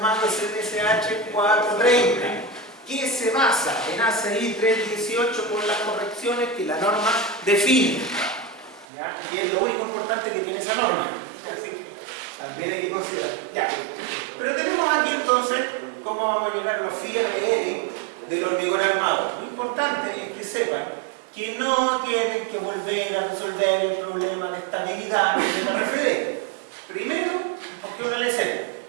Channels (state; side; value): drops out; left; at 8.8 s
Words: CTSH 430, que se basa en ACI 318 por las correcciones que la norma define. ¿Ya? Y es lo único importante que tiene esa norma. Así que también hay que considerar. Ya. Pero tenemos aquí entonces cómo vamos a llegar a los FIRL del hormigón armado. Lo importante es que sepan que no tienen que volver a resolver el problema de estabilidad de la RFD. Primero, porque una LC,